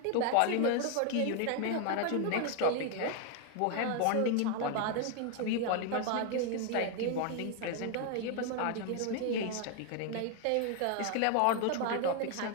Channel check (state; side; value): different; both; correlation 0.01